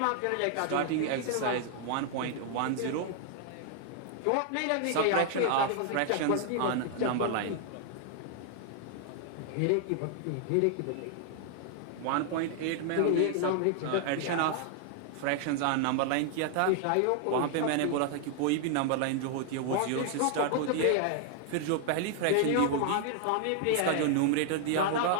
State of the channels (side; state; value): both; different; correlation 0.00